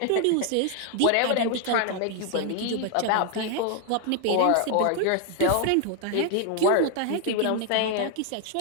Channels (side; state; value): both; different; correlation 0.00